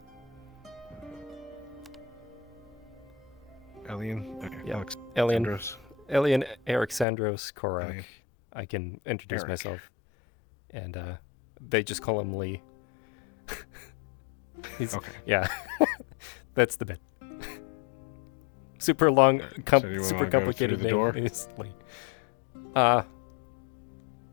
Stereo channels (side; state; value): right; drops out; at 7.1 s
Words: Elian? Okay, Yeah, Alexandros. Elian Alexandros Korak. Elian. I can introduce Eric. myself. And they just call him Lee. Okay. Yeah, that's the bit. Super long, So do you super wanna go complicated through the name. door? Is Lee.